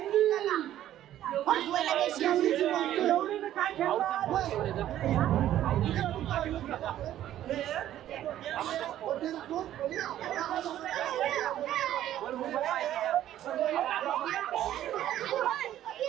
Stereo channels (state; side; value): quieter; left; 12.3 dB